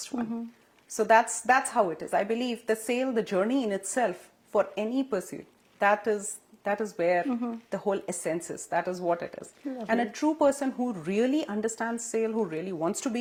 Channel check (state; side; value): identical; both; correlation 1.00